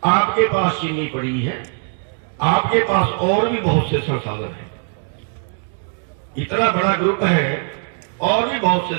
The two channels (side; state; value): left; silent; 64 dB below the other